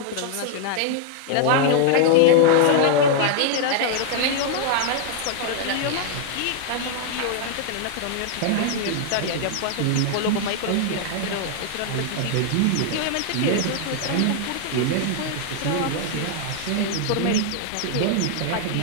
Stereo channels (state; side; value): different; both; correlation 0.00